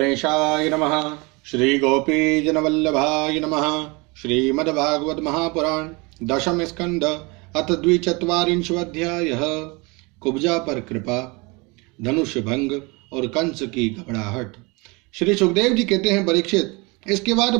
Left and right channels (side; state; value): left; quieter; 27.3 dB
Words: नमः। श्री गोपीजनवल्लभाय नमः। श्रीमद्भागवत महापुराण दशम स्कंद अथ द्विचत्वारिंशोऽध्यायः। कुब्जा पर कृपा, धनुष भंग और कंस की घबराहट। श्री सुखदेव जी कहते हैं, परीक्षित, इसके बाद